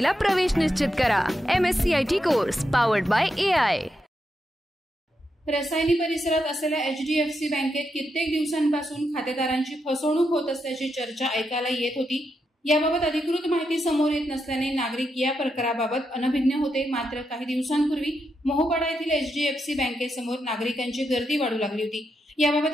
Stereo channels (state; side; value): normal; both; correlation 0.84